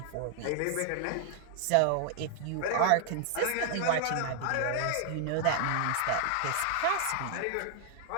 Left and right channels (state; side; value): different; both; correlation 0.00